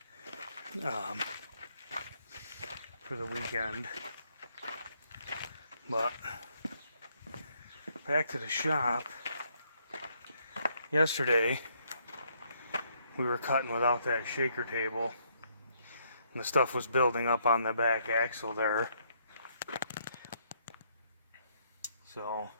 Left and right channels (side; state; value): both; inverted; correlation -0.71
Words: For the weekend. But back to the shop. Yesterday we were cutting without that shaker table, and the stuff was building up on the back axle there. So